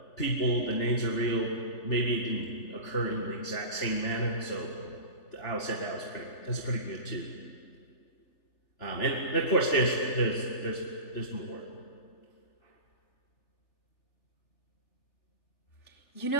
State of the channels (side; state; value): right; late; 3.4 ms